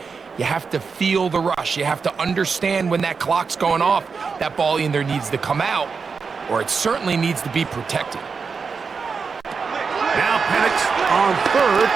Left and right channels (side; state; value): left; quieter; 5.3 dB